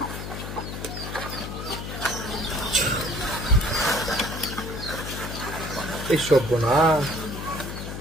এই সব না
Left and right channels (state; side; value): noise; left; hum, 7 dB below the sound